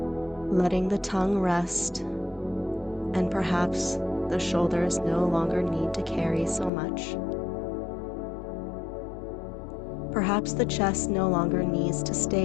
letting the tongue rest, and perhaps the shoulders no longer need to carry so much. Perhaps the chest no longer needs to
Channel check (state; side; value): drops out; right; at 6.7 s